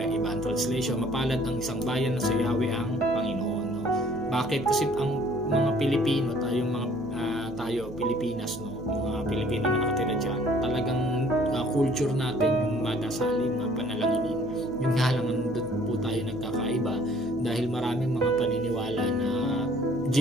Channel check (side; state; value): right; noise; hum, 15 dB below the sound